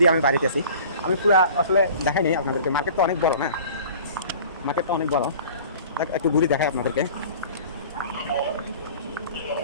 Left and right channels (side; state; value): both; inverted; correlation -0.44